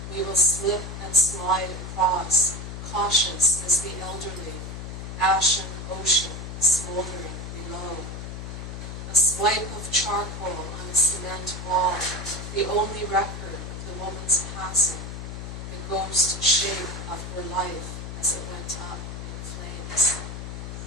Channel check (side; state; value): left; noise; hum, 8 dB below the sound